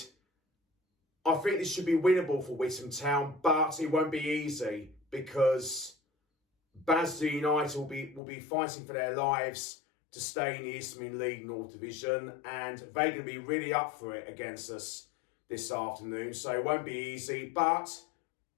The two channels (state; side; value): drops out; right; at 8.2 s